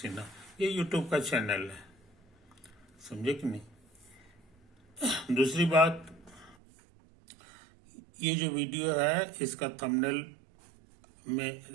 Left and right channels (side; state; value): left; drops out; at 6.6 s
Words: ये यूट्यूब का चैनल है, समझे कि नहीं। दूसरी बात, ये जो वीडियो है इसका थंबनेल में